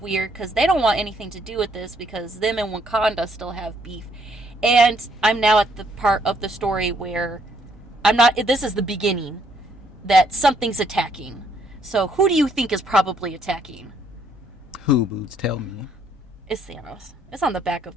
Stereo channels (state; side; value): normal; both; correlation 0.68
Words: weird because they don't want anything to do with this because them and Wakanda still have beef. And I'm now at the part of the story where this is the beginning, that something's attacking. So who do you think is probably attacking? Who, Boots? Tell me. It's Thanos. It's on the back